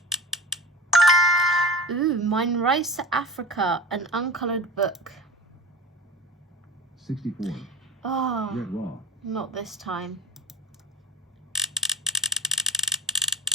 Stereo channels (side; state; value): both; normal; correlation 0.32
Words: Ooh, Mine Rice Africa, an uncoloured book. 64. Oh, Red raw. not this time.